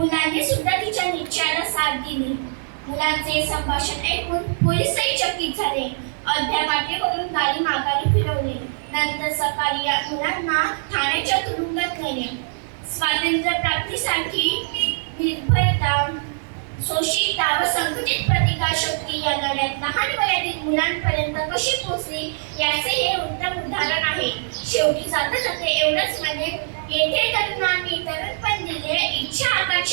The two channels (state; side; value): silent; left; digital silence